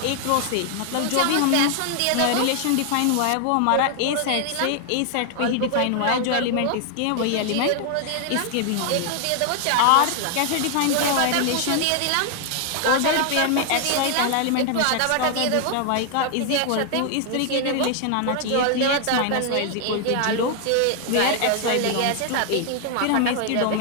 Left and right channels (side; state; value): both; different; correlation 0.00